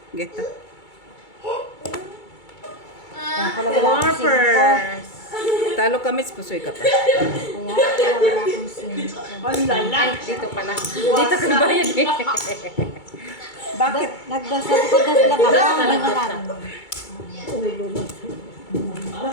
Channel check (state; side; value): late; right; 2.3 ms